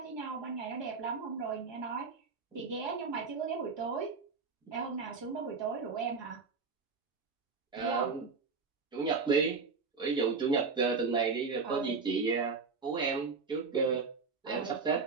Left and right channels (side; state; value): left; quieter; 4.8 dB